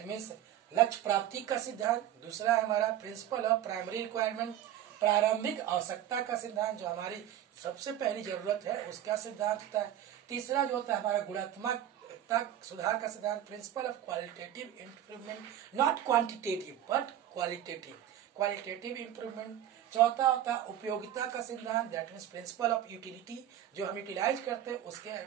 means लक्ष्य प्राप्ति का सिद्धांत। दूसरा है हमारा प्रिंसिपल ऑफ प्राइमरी रिक्वायरमेंट, प्रारंभिक आवश्यकता का सिद्धांत, जो हमारी सबसे पहली जरूरत है उसका सिद्धांत होता है। तीसरा जो होता है हमारा गुणात्मक सुधार का सिद्धांत, principle of qualitative improvement, not quantitative but qualitative improvement. चौथा होता है उपयोगिता का सिद्धांत, that means principle of utility, जो हम यूटिलाइज करते हैं उसके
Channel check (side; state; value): left; quieter; 11.5 dB